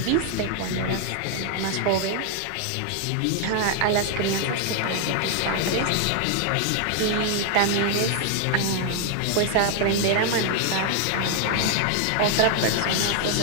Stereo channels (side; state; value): both; different; correlation 0.00